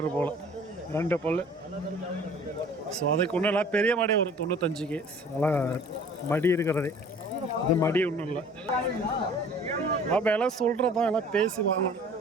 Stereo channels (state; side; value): normal; both; correlation 0.49